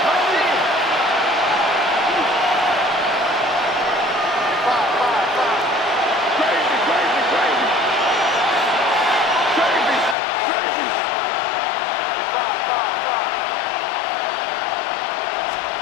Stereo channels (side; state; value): right; drops out; at 10.2 s